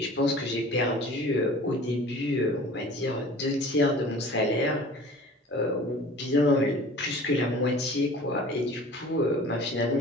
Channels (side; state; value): both; normal; correlation 0.44